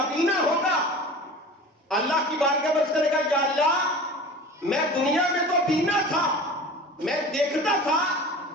ہوگا۔ اللہ کی بارگاہ میں کرے گا، یا اللہ میں دنیا میں تو بینا تھا، میں دیکھتا تھا،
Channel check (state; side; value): normal; both; correlation 0.38